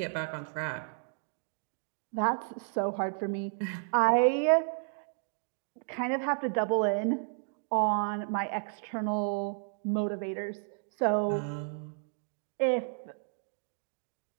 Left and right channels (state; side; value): silent; left; digital silence